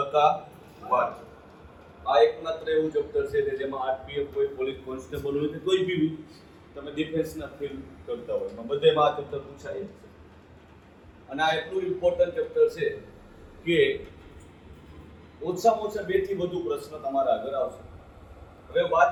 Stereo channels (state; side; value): identical; both; correlation 1.00